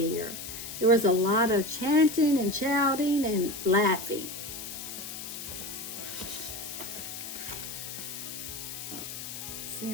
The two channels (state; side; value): noise; left; hiss, 8 dB below the sound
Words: There was a lot of chanting and shouting and laughing. See